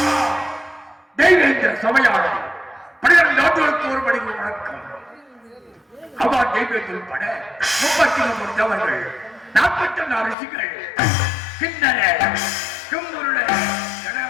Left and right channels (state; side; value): drops out; right; at 10.4 s